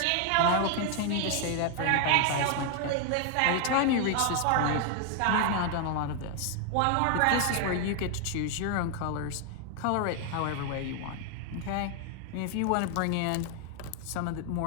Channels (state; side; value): different; both; correlation 0.00